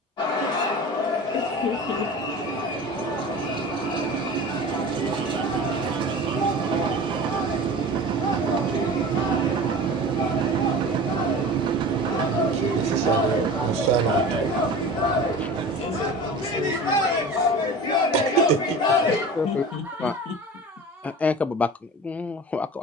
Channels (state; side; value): normal; both; correlation 0.36